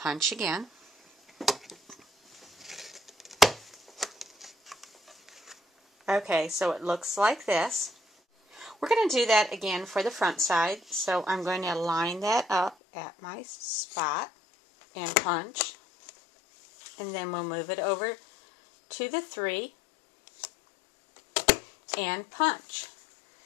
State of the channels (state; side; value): drops out; right; at 12.8 s